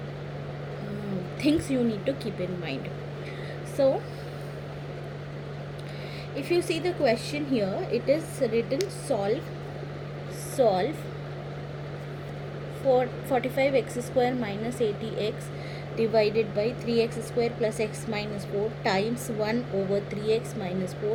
things you need to keep in mind. So if you see the question here, it is written solve for 45x square minus 80x divided by 3x square plus x minus 4 times 1 over 3x minus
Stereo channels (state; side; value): identical; both; correlation 1.00